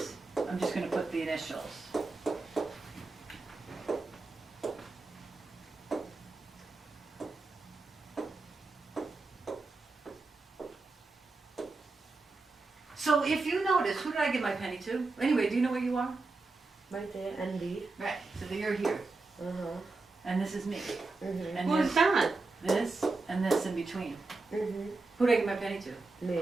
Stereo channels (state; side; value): quieter; left; 3.6 dB